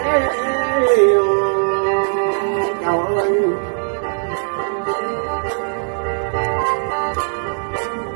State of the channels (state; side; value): silent; left; digital silence